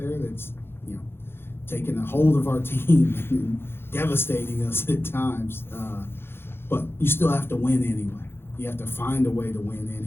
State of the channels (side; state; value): right; late; 0.11 ms